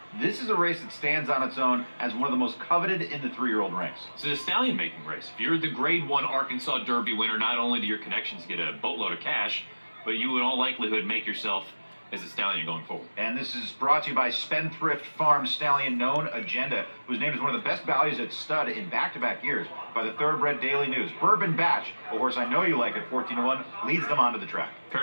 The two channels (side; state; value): both; inverted; correlation -1.00